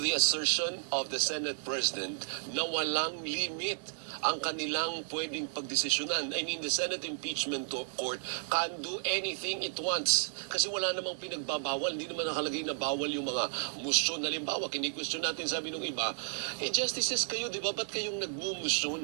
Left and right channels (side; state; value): left; silent; digital silence